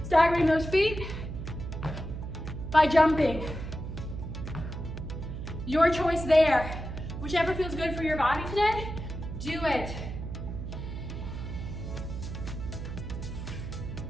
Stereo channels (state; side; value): noise; right; hum, 7 dB below the sound